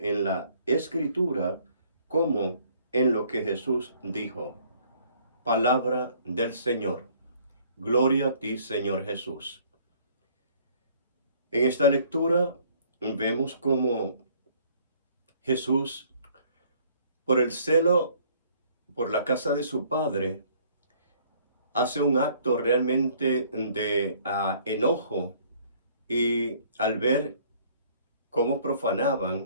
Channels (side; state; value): both; inverted; correlation -0.60